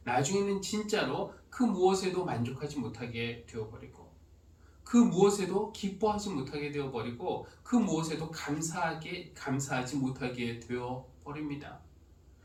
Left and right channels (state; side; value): identical; both; correlation 1.00